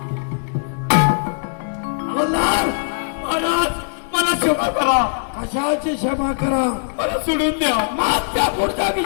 मल्हार, महाराज मला क्षमा करा, कशाची क्षमा करा. मला सोडून द्या. मागच्या पुढचा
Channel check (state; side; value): silent; right; digital silence